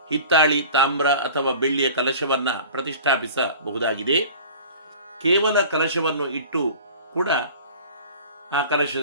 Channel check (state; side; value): inverted; both; correlation -0.41